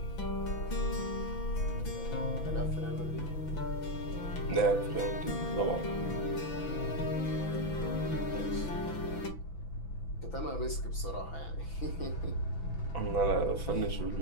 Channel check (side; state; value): right; late; 6.0 ms